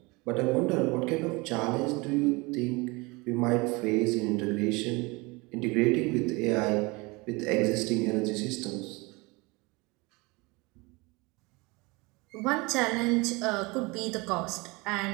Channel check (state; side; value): quieter; left; 25.4 dB